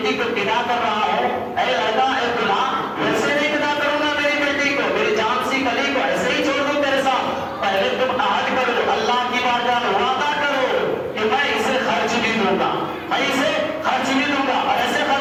کو بدا کر رہا ہوں، اے لڑکا اے دلہا، ویسے نہیں بدا کروں گا میری بیٹی کو، میری جان سی کلی کو ایسے ہی چھوڑ دوں تیرے ساتھ. پہلے تم عہد کرو، اللہ کی بارگاہ میں وعدہ کرو کہ میں اسے خرچ بھی دوں گا، میں اسے خرچ بھی دوں گا. اور ایسے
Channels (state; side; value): identical; both; correlation 1.00